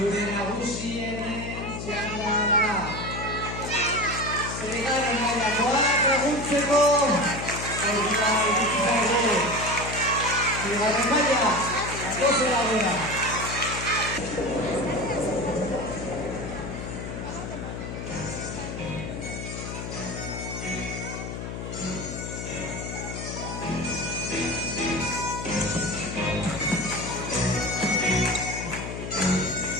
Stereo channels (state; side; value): noise; left; hum, 6 dB below the sound